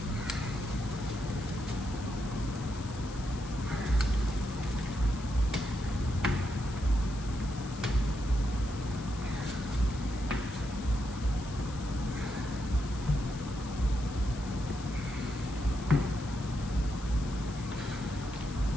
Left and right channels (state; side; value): noise; left; hiss, 16 dB below the sound